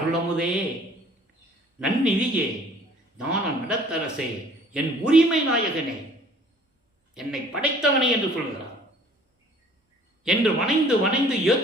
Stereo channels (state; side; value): normal; both; correlation 0.54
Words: நன்னிதியே, ஞான நடத்தரசே, என் உரிமை நாயகனே, என்னை படைத்தவனே என்று சொல்கிறார். என்று வணைந்து வணைந்து